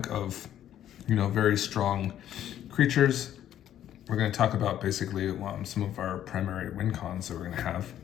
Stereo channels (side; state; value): right; quieter; 11.2 dB